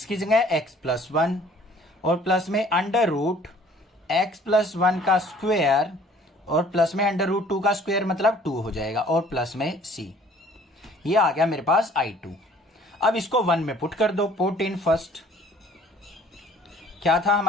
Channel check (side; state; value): both; normal; correlation 0.54